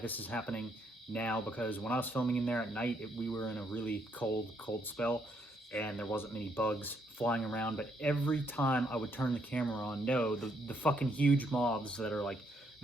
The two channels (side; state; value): both; normal; correlation 0.72